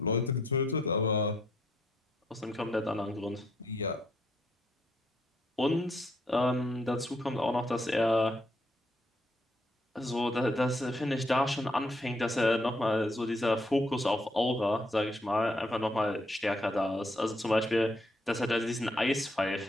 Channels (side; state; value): both; normal; correlation 0.73